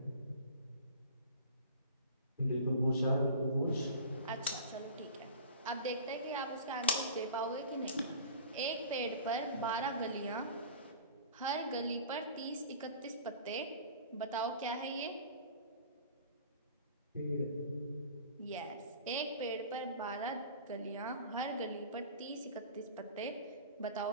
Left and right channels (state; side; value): inverted; both; correlation -0.40